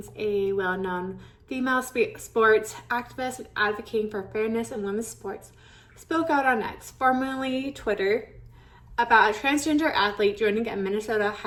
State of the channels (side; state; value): both; identical; correlation 1.00